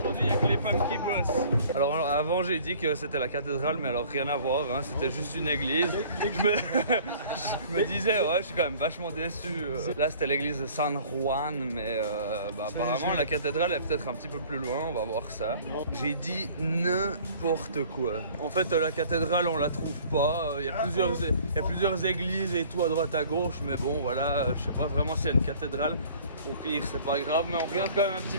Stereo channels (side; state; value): both; inverted; correlation -0.51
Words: il n'y a que les femmes qui bossent. Alors avant, j'ai dit que c'était la cathédrale, mais alors rien à voir, hein. C'était juste une église. Je me disais, ouais, je suis quand même vachement déçu. Là, c'était l'église de San Juan, mais apparemment, la cathédrale est peut-être un petit peu plus loin, on va voir ça. J'ai dit n'importe quoi. En fait, la cathédrale, on la trouve pas. Il y a plusieurs églises et tout à droite à gauche, mais bon, voilà, je sais pas vraiment s'il y a une cathédrale. Au pire, c'est pas grave, mais on regarde quand même un petit